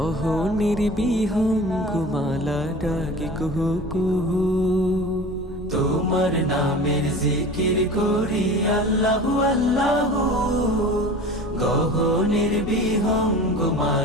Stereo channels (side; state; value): both; normal; correlation 0.38